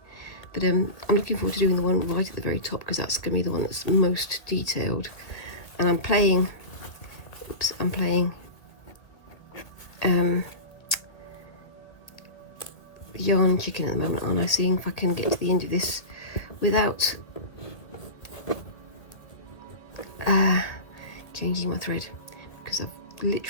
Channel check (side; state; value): right; late; 1.5 ms